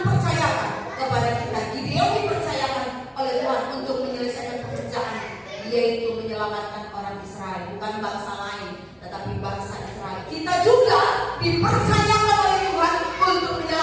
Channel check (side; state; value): both; identical; correlation 1.00